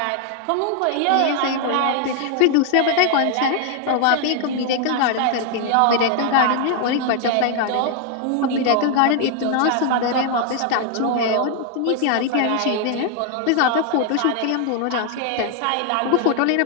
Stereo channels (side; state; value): both; different; correlation 0.00